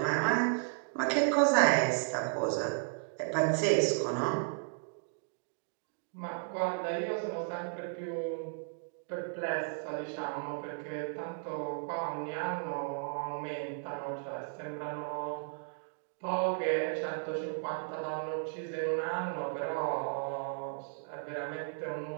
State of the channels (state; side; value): silent; left; digital silence